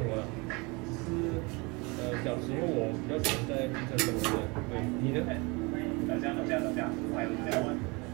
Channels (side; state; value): left; quieter; 27.3 dB